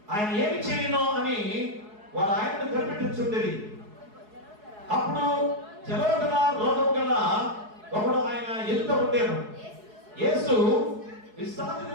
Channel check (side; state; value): left; late; 4.7 ms